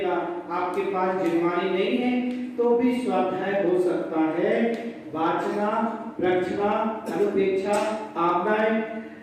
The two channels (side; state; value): both; identical; correlation 1.00